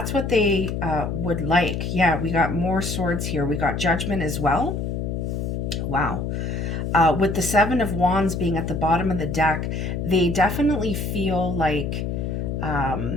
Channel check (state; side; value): noise; left; hum, 2 dB below the sound